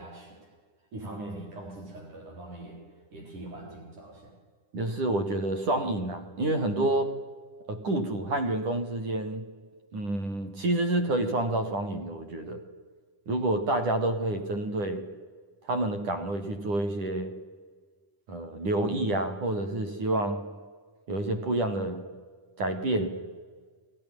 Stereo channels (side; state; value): left; late; 10 ms